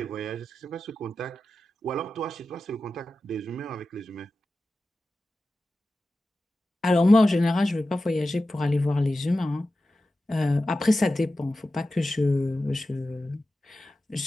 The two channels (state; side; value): normal; both; correlation 0.93